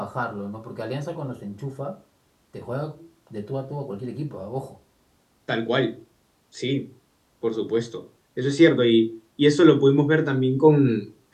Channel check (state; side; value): identical; both; correlation 1.00